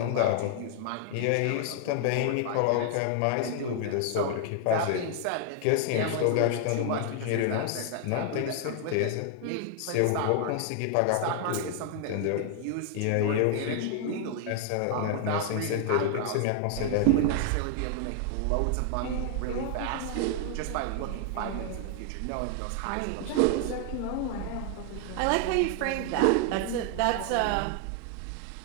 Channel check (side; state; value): both; different; correlation 0.00